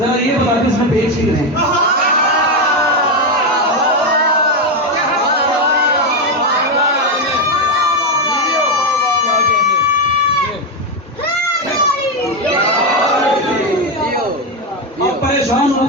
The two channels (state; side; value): normal; both; correlation 0.08